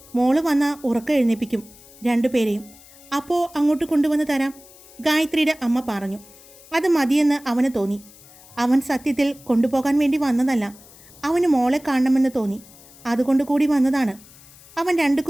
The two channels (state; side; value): noise; left; hiss, 23 dB below the sound